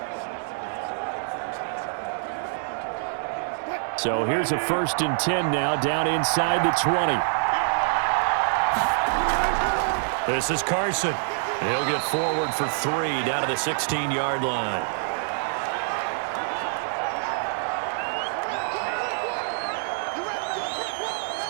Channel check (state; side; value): silent; left; digital silence